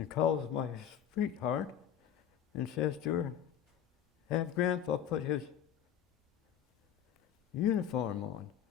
calls my sweetheart and says to her, have Grandpa put his uniform on,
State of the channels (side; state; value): right; quieter; 9.7 dB